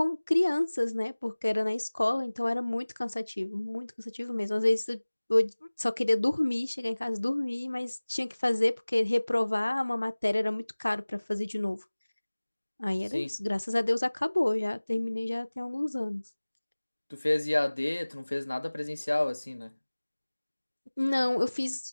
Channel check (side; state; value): both; inverted; correlation -1.00